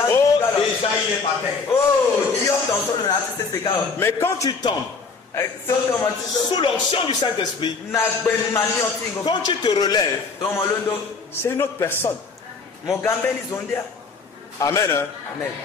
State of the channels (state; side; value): quieter; right; 4.6 dB